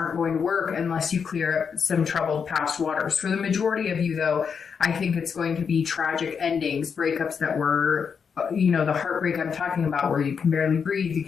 going to work unless you clear up some troubled past waters. For the majority of you, though, I think it's going to be tragic endings, breakups that were, the heartbreak I'm talking about, where you can barely breathe, you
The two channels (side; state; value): right; quieter; 6.4 dB